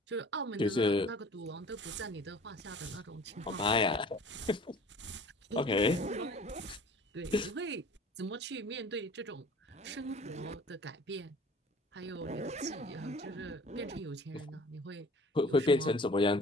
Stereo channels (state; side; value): normal; both; correlation 0.47